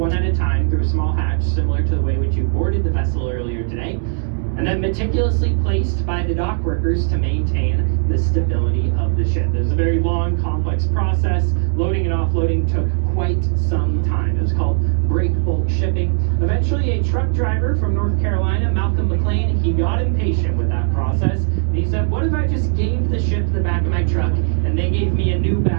at a time, through a small hatch, similar to the way which you boarded the vessel earlier today, and then meticulously placed by the dock workers to maintain the stability of the ship. It was a very long, complex process. Loading and offloading took quite some time. It was called break bulk shipping. Eventually, a truck driver from North Carolina, Malcolm McLean, he got impatient with that process, and he said, what if I just gave the ship the back of my truck, and they gave me a new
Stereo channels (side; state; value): left; silent; 62 dB below the other